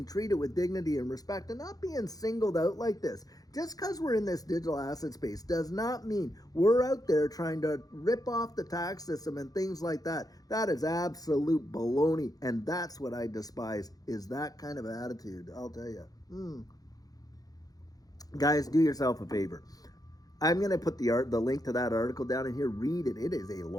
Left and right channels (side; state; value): right; late; 0.18 ms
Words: treated with dignity and respect and not being singled out like this. Just because we're in this digital asset space does not mean we're out there trying to rip off the tax system and things like that. That is absolute baloney, and that's what I despise, is that kind of attitude, I'll tell you. Guys, do yourself a favor. I'm going to put the link to that article down in here. Read it. It is a